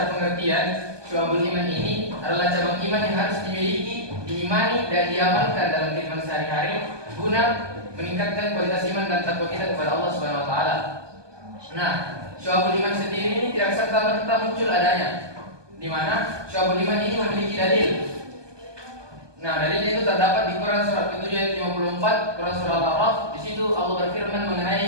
pengertian Syu'abul Iman ini adalah cabang iman yang harus dimiliki, diimani dan diamalkan dalam kehidupan sehari-hari guna meningkatkan kualitas iman dan takwa kita kepada Allah Subhanahu wa taala. Nah, Syu'abul Iman sendiri ini tidak serta-merta muncul adanya, di mana Syu'abul Iman ini memiliki dalil. Nah, dalilnya itu terdapat di Quran surat ke-7 ayat 54, Quran surah Al-A'raf. Di situ Allah berfirman mengenai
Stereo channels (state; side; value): late; left; 1.2 ms